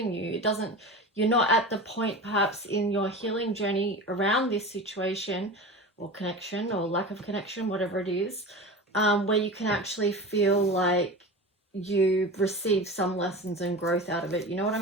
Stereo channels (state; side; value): normal; both; correlation 0.30